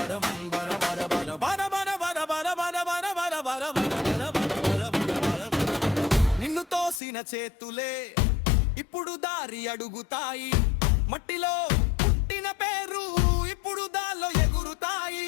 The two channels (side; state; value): right; drops out; at 7.0 s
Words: నిన్ను తోసిన చేతులే ఇప్పుడు దారి అడుగుతాయి. మట్టిలో పుట్టిన పేరు ఇప్పుడు దాల్లో